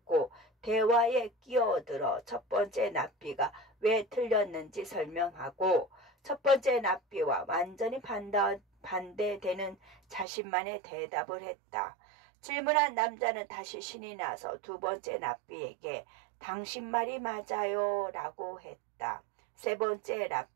대화에 끼어들어 첫 번째 납비가 왜 틀렸는지 설명하고 첫 번째 납비와 완전히 반대되는 자신만의 대답을 했다. 질문한 남자는 다시 신이 나서 두 번째 납비에게 당신 말이 맞아요 라고 했다. 세 번째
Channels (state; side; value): drops out; left; at 10.2 s